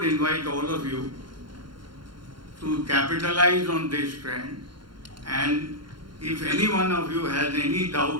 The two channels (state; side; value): late; left; 0.72 ms